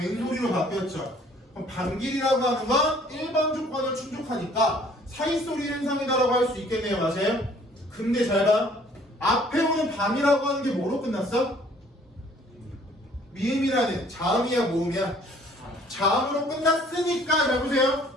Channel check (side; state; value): both; normal; correlation 0.57